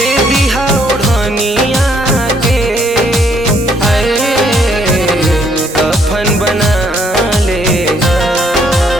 दीहा ओढ़निया के, अरे कफन बना ले हा।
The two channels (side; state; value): both; normal; correlation 0.68